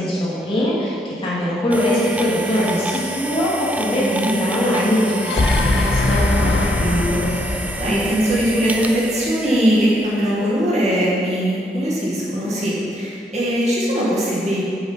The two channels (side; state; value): both; normal; correlation 0.73